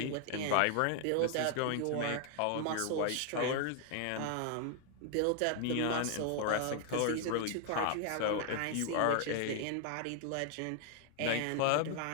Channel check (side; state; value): both; different; correlation 0.00